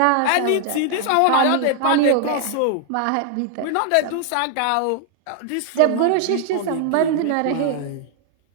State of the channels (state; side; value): different; both; correlation 0.00